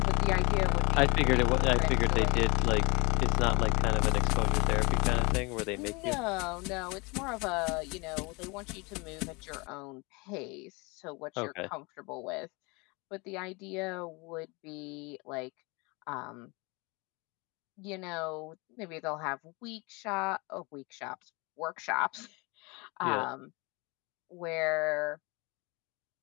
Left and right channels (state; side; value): quieter; right; 27.6 dB